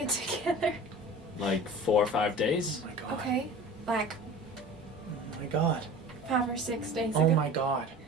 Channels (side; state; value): both; normal; correlation 0.39